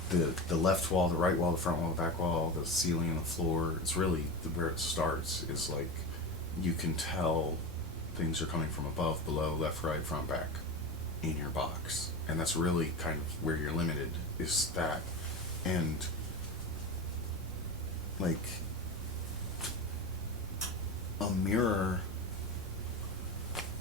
the left wall, the right wall, the front wall, the back wall, the ceiling and the floor. It's really where it starts is like you can tell things are coming from above, below, left, right, front, back in your box, and that's really kind of where you're limited, is that. And like a mirror,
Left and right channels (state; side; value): normal; both; correlation 0.23